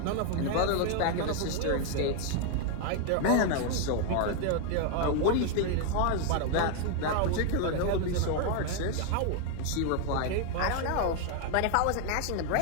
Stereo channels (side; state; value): both; different; correlation 0.00